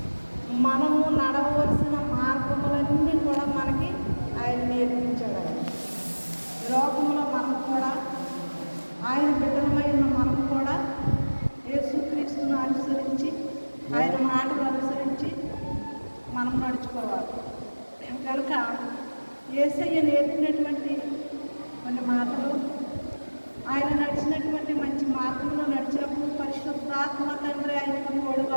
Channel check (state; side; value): inverted; both; correlation -1.00